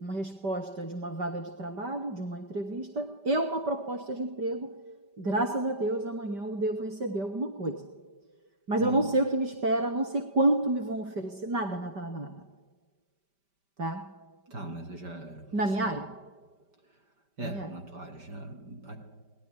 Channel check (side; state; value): left; late; 5.1 ms